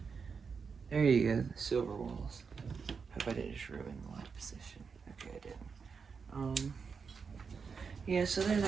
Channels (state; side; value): quieter; left; 5.6 dB